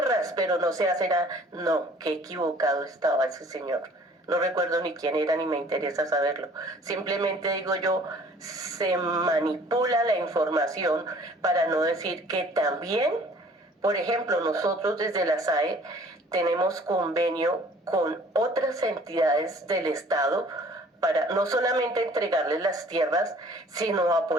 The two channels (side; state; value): both; normal; correlation 0.53